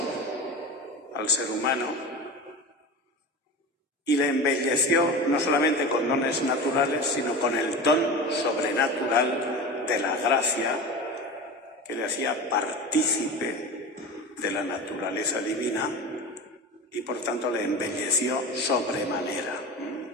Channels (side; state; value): both; normal; correlation 0.29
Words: al ser humano y le embelleció no solamente con dones naturales, sino con el don sobrenatural de la gracia que le hacía partícipe de la naturaleza divina y por tanto le embelleció sobremanera.